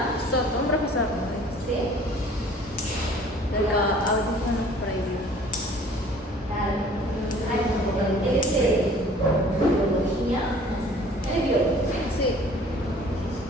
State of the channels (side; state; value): both; normal; correlation 0.51